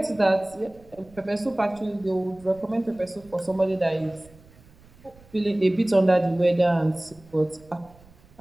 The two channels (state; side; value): noise; right; rumble, 26 dB below the sound